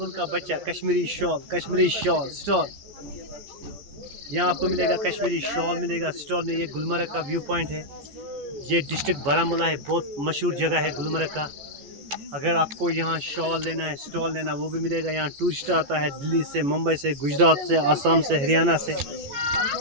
का बच्चा Kashmiri shawl stall. यहाँ आपको मिलेगा कश्मीरी शॉल मिलेगा स्टॉल में। ये गुलमर्ग का व्यू पॉइंट है। ये डिस्ट्रिक्ट बारामूला है, बहुत मशहूर जगह है गुलमर्ग का। अगर आपको यहाँ शॉल लेना है स्टॉल लेना वो भी मिलेगा। यहाँ टूरिस्ट आता है दिल्ली से, मुंबई से, गुजरात से, आसाम से, हरियाणा से।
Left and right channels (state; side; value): late; left; 14 ms